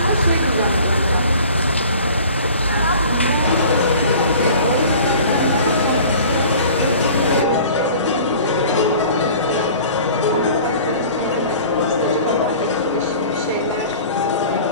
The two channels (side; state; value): both; inverted; correlation -0.45